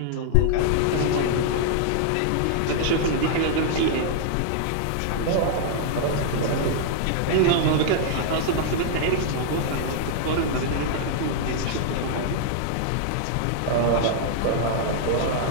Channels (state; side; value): different; both; correlation -0.01